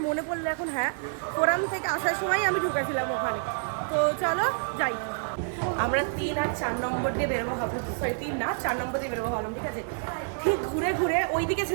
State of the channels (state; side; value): silent; left; digital silence